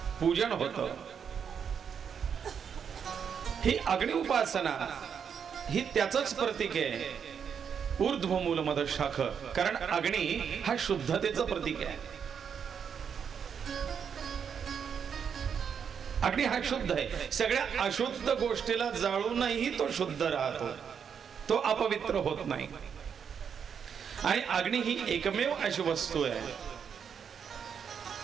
पूजन होतं. ही अग्नि उपासना ही त्याचंच प्रतीक आहे, ऊर्ध्वमूल मदशाख. कारण अग्नी हा शुद्धतेचं प्रतीक आहे. अग्नी हा शुद्ध आहे. सगळ्या अशुद्ध गोष्टीला जाळूनही तो शुद्ध राहतो, तो अपवित्र होत नाही. आणि अग्नी ही एकमेव अशी वस्तू आहे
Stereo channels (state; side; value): quieter; left; 7.3 dB